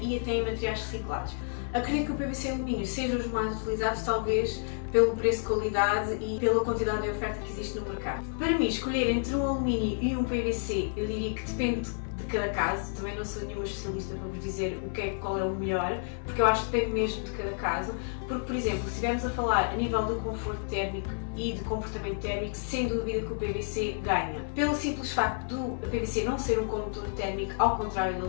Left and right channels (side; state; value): right; silent; digital silence